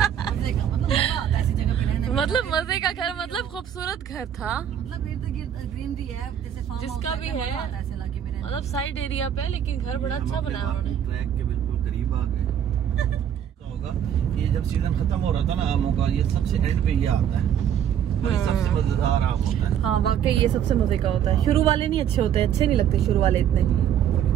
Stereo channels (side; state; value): left; quieter; 9.5 dB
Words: का मतलब मजा आता है ऐसी जगह पे रहने में। मतलब मजे का घर, मतलब खूबसूरत घर था, मतलब इर्द गिर्द ग्रीनरी है, जैसे फार्म हाउस जिसका भी है, ऐसे इलाके में रहने। मतलब साइड एरिया पे, लेकिन घर बड़ा अच्छा बनाया उन्होंने। ट्रैक के बिल्कुल करीब आ गए। होगा ये जब सीजन खत्म हो रहा था ना आमों का, ये सबसे एंड पे ये आता है और ये सबसे मजेदार आम होता है। हाँ वाकई ये सबसे मजे का होता है। शुरू वाले नहीं अच्छे होते, अच्छे नहीं लगते शुरू वाले इतने,